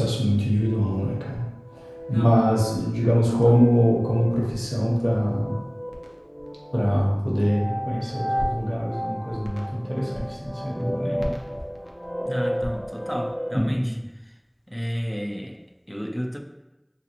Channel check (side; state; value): both; identical; correlation 1.00